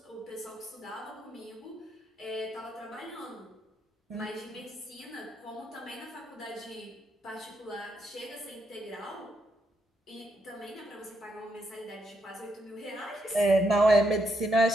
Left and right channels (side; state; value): both; normal; correlation 0.79